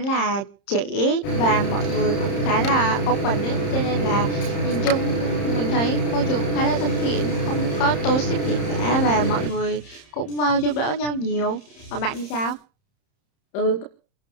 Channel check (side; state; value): right; late; 30 ms